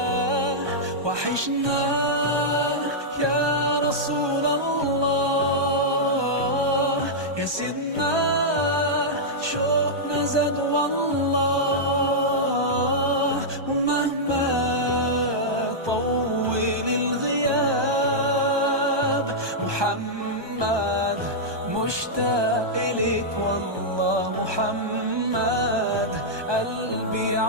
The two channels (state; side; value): late; left; 1.2 ms